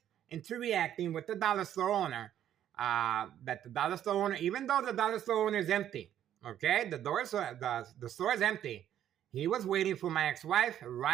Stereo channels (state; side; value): quieter; left; 10.9 dB